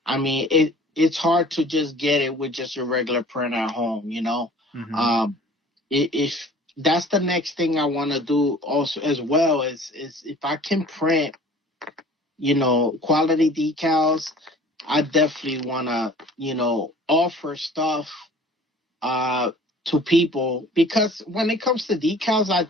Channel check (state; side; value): normal; both; correlation 0.48